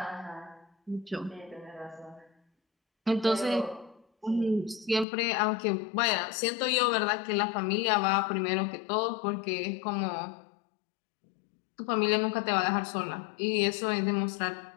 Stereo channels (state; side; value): drops out; right; at 5.1 s